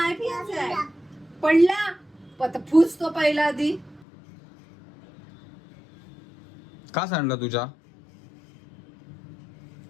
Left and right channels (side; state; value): right; drops out; at 4.0 s